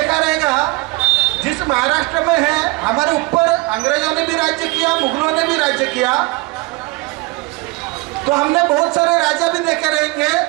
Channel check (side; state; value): left; quieter; 23.5 dB